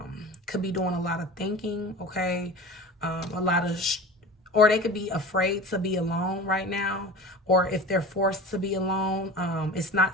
could be doing a lot of thinking, okay? A lot of... or they could be afraid to be alone right now, or if they're forced to be alone, it's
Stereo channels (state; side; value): normal; both; correlation 0.36